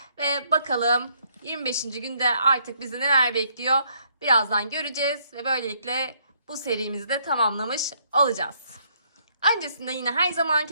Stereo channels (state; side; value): inverted; both; correlation -0.69